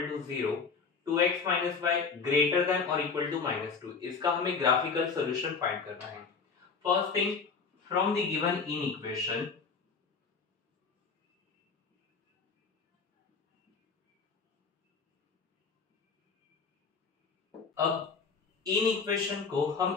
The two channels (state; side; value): quieter; right; 5.2 dB